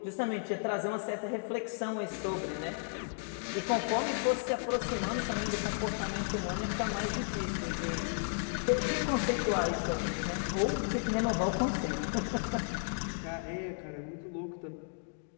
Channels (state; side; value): silent; right; digital silence